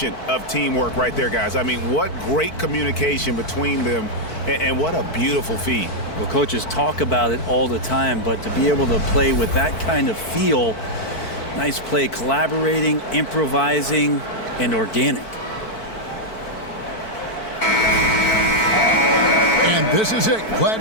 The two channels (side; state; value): right; late; 4.5 ms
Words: of teamwork right there, guys. I mean, what great communication between them, and what a beautiful feed. Well, coaches talk about it all the time, but to be able to play with that kind of feel, nice play, collaborating, improvising, and organic. And this is it.